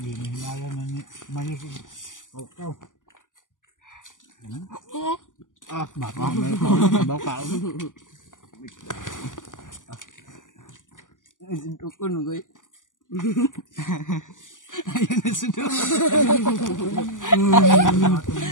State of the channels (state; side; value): late; right; 0.88 ms